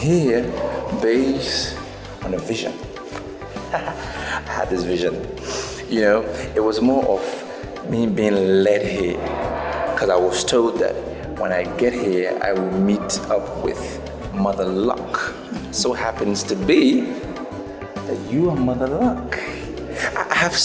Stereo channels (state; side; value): identical; both; correlation 1.00